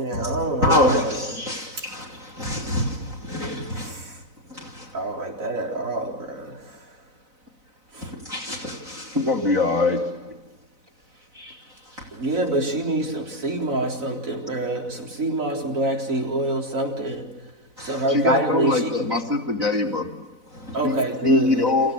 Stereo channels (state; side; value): late; left; 4.0 ms